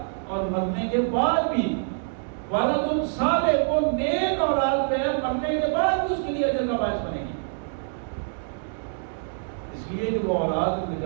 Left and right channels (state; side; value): silent; left; digital silence